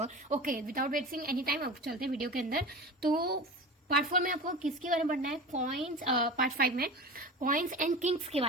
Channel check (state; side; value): normal; both; correlation 0.31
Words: Okay, without wasting any time अब चलते हैं वीडियो के अंदर. तो पार्ट 4 में आपको किसके बारे में पढ़ना है? कॉइन्स. पार्ट 5 में कॉइन्स एंड किंग्स के